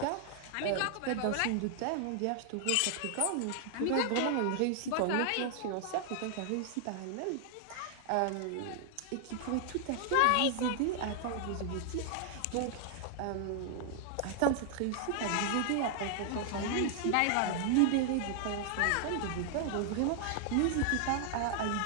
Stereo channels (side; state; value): both; different; correlation 0.00